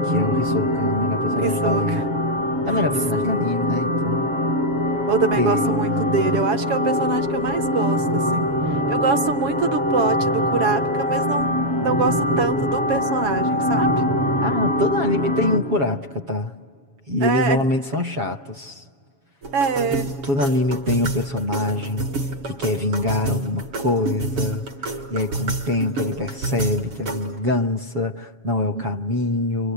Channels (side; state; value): left; late; 7.2 ms